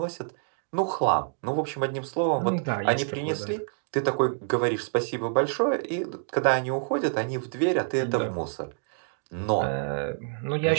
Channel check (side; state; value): left; silent; digital silence